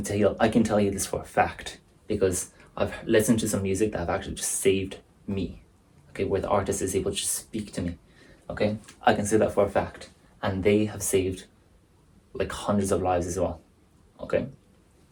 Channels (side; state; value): both; identical; correlation 1.00